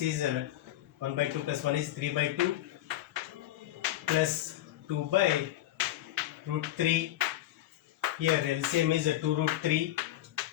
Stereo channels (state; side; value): quieter; right; 14.1 dB